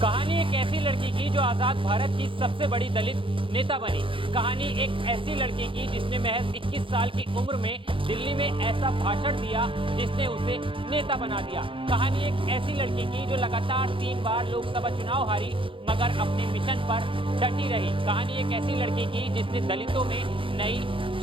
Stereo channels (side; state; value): left; late; 0.25 ms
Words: कहानी एक ऐसी लड़की की जो आजाद भारत की सबसे बड़ी दलित नेता बनी। कहानी एक ऐसी लड़की की जिसने महज 21 साल की उम्र में दिल्ली में ऐसा भाषण दिया जिसने उसे नेता बना दिया। कहानी एक ऐसी लड़की की जो लगातार 3 बार लोकसभा चुनाव हारी मगर अपने मिशन पर डटी रही। कहानी एक ऐसी लड़की की जिसने दलितों में नई